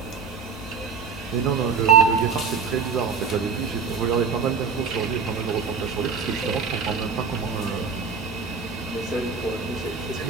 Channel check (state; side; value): quieter; left; 5.6 dB